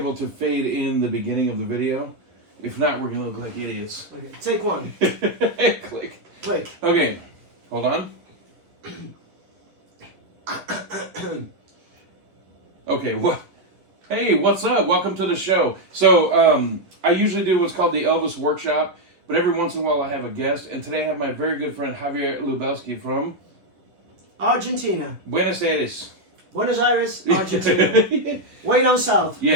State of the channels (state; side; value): late; left; 11 ms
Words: to fade in the beginning of the video. If not, we're going to look like idiots. Okay, take one. Click. Click. Okay, hold on. Okay, what? Hey, what's up? Welcome to the show. So, I usually do what's called the Elvis Workshop, but every once in a while I have a guest, and today I have my very good friend Javier Lubelski from Argentina. Buenos Aires. Buenos Aires, Argentina. Way down south.